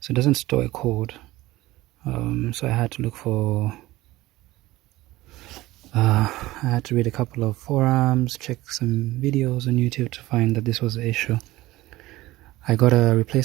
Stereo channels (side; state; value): left; quieter; 18.0 dB